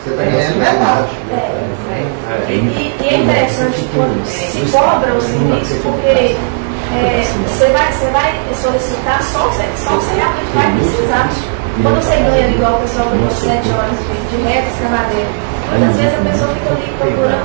Você está ganhando metade. E é interessante quando se cobra o serviço, porque você vai solicitar só o que você realmente vai precisar. Quando você ganha igual o pessoal ganhou 7 horas de reta, escavadeira, muitas vezes a pessoa fica ali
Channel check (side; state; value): left; silent; 72 dB below the other